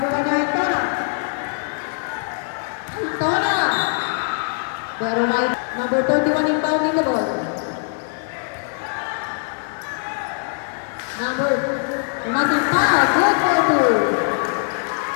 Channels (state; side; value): silent; right; digital silence